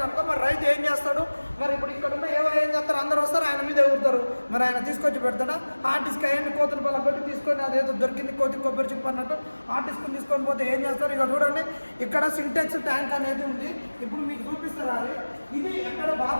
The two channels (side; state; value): both; inverted; correlation -1.00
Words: మరి రైతు ఏం చేస్తాడు? మరి ఇప్పుడు ఇక్కడ ఉన్న ఏం చేస్తారు? అందరూ వస్తారు, ఆయన మీద ఎగురుతారు. మరి ఆయన తీసుకొచ్చి పెడతాడా? హార్డ్ డిస్క్ అయ్యండి కోతులు బల పెట్టి తీసుకొని అదేదో దొరికింది కోతి కొబ్బరి చిప్ అన్నట్టు హార్డ్ డిస్క్ తీసుకొని పోతే ఏం చేస్తారు? ఇక చూడండి, ఇక్కడ సింటెక్స్ ట్యాంక్ అనేది ఉంది. ఇప్పుడు మీకు చూపిస్తారు. అది ఇది ఎక్కడ